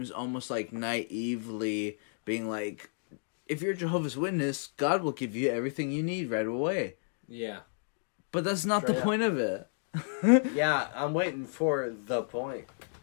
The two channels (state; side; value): silent; right; digital silence